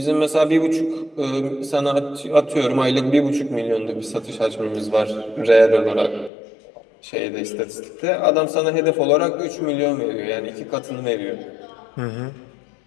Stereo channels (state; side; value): drops out; right; at 6.3 s